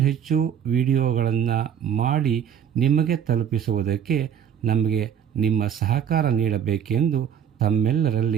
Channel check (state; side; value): quieter; left; 8.7 dB